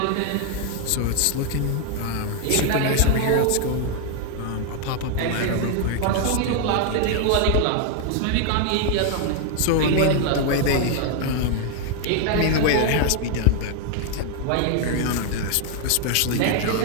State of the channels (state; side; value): different; both; correlation 0.00